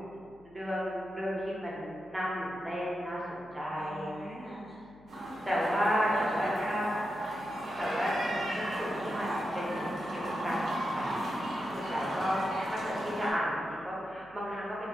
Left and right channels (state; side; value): noise; left; hum, 27 dB below the sound